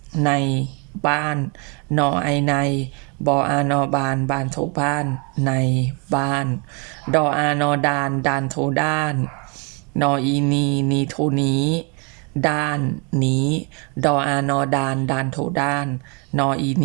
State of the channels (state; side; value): quieter; left; 33.8 dB